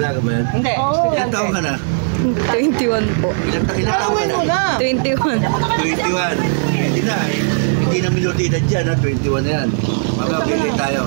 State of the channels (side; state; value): left; silent; digital silence